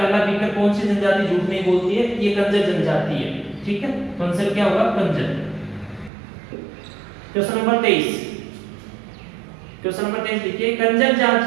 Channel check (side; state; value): left; drops out; at 6.1 s